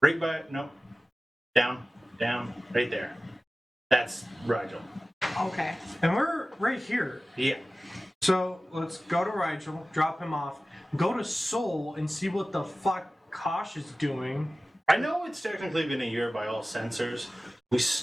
Right by. No. Down. Right there. That's Rigel. Okay. And we're right here. Yeah. So let's go to Rigel, drop him off, go to Seoul and see what the fuck Kosh is doing. I know it's technically been a year by all sensors. We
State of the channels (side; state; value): both; normal; correlation 0.96